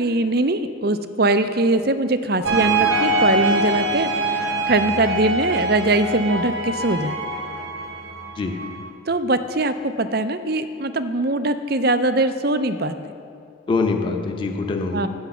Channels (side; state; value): both; normal; correlation 0.10